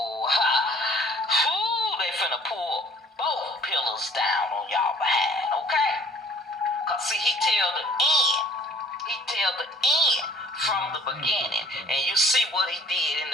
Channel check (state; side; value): normal; both; correlation 0.53